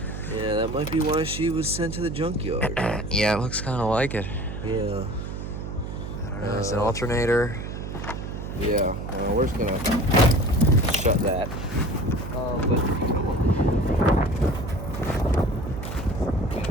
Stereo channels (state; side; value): noise; right; hum, 7 dB below the sound